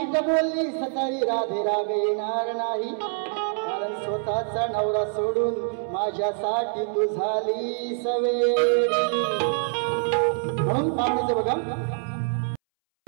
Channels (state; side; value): silent; left; 62 dB below the other